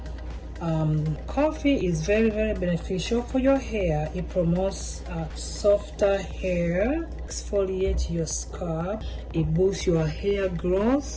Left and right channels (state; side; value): identical; both; correlation 1.00